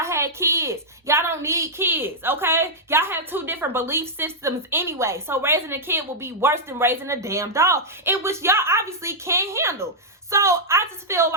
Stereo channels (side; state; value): both; normal; correlation -0.07